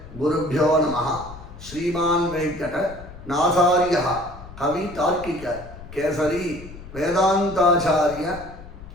குருபியோ நமः. ஸ்ரீமான் வெங்கட நாசாரிய கவி தார்க்கிக கேசரி வேதாந்தாச்சாரிய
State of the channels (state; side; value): noise; left; rumble, 16 dB below the sound